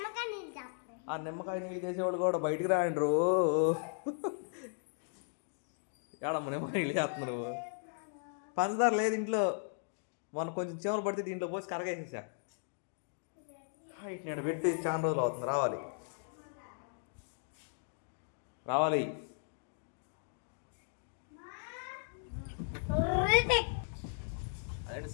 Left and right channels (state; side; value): silent; right; digital silence